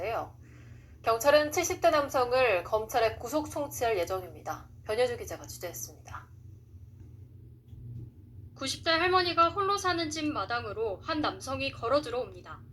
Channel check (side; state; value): both; identical; correlation 1.00